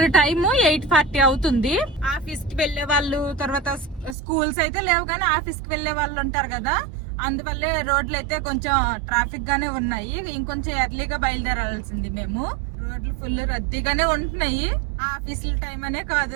టైము 8:40 అవుతుంది. ఆఫీస్ కి వెళ్లే వాళ్ళు, తర్వాత స్కూల్స్ అయితే లేవు కానీ ఆఫీస్ కి వెళ్లే వాళ్ళు ఉంటారు కదా, అందువల్లే రోడ్లు అయితే కొంచెం ట్రాఫిక్ గానే ఉన్నాయి. ఇంకొంచెం ఎర్లీగా బయలుదేరాల్సింది మేము. రోడ్లు ఫుల్ రద్దీగానే ఉంటున్నాయి. ఆఫీసుల టైం అనే కాదు,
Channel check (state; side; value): drops out; left; at 4.2 s